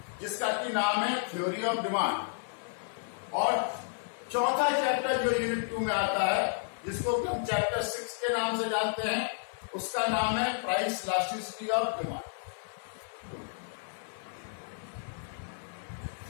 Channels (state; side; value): silent; right; 57 dB below the other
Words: जिसका की नाम है थ्योरी ऑफ डिमांड, और चौथा चैप्टर जो यूनिट 2 में आता है, जिसको हम चैप्टर 6 के नाम से जानते हैं, उसका नाम है प्राइस इलास्टिसिटी ऑफ डिमांड।